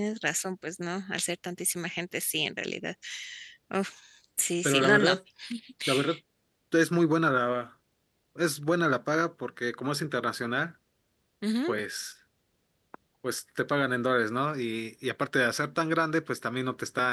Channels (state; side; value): identical; both; correlation 1.00